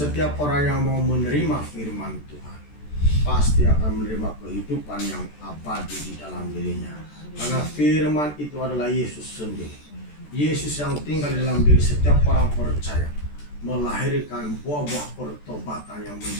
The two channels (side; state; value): right; late; 14 ms